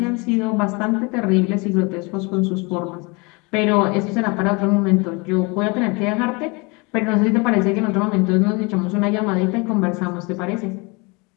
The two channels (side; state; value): right; quieter; 28.6 dB